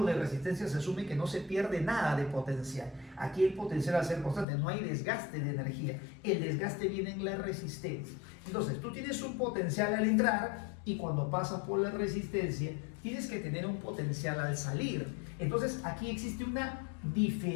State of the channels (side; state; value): right; drops out; at 4.5 s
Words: de resistencia se asume que no se pierde nada de potencial. Aquí el potencial va a ser constante, no hay desgaste de energía. El desgaste viene en la resistencia. Entonces, tú tienes un potencial al entrar y cuando pasas por la resistencia tienes que tener un potencial al salir. Entonces aquí existe una